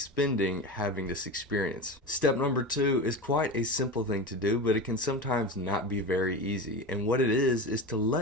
having this experience. Step number 2 is quite a simple thing to do, but it can sometimes not be very easy. And what it is to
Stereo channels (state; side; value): normal; both; correlation 0.26